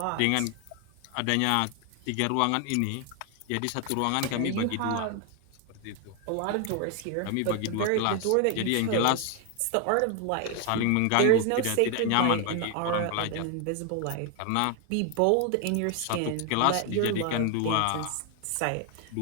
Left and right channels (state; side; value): different; both; correlation 0.01